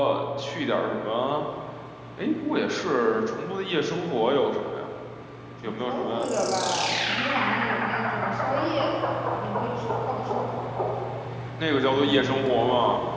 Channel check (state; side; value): identical; both; correlation 1.00